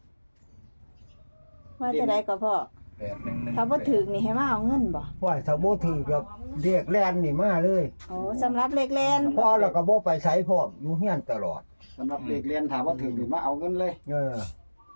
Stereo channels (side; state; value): both; inverted; correlation -1.00